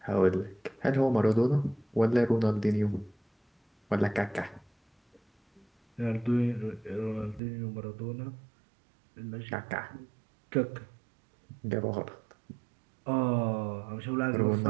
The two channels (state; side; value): drops out; left; at 7.4 s